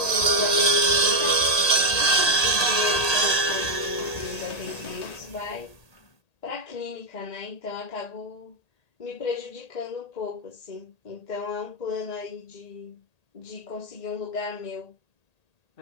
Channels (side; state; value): right; late; 1.8 ms